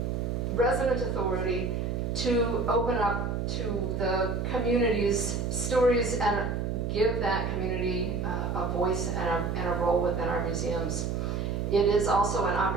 resident authority to open up to the community's stories and give that community a voice and a role within our museums. It is also an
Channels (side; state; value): right; noise; hum, 1 dB below the sound